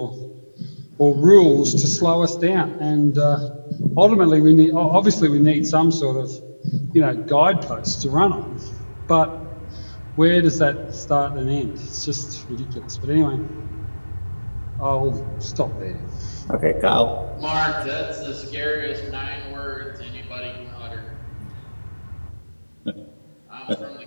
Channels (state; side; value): inverted; both; correlation -1.00